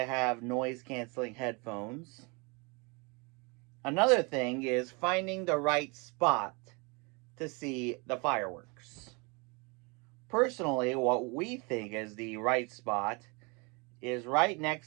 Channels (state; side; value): quieter; left; 30.0 dB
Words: have noise canceling headphones. Another thing is finding the right spot to see the fireworks. Personally, what we think is the right spot is right